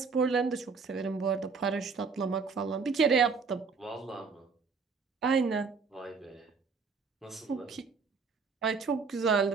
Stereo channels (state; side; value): quieter; left; 5.0 dB